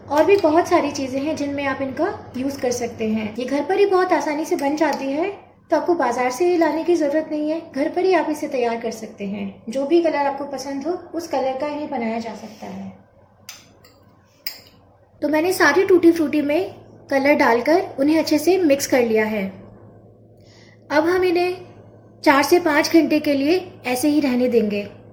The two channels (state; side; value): identical; both; correlation 1.00